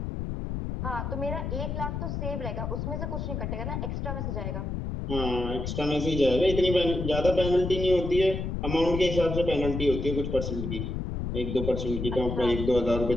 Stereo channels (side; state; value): left; noise; rumble, 3 dB below the sound